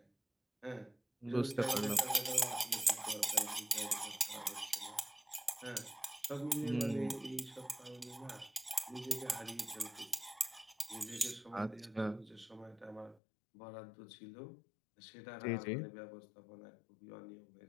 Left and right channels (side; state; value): right; drops out; at 13.2 s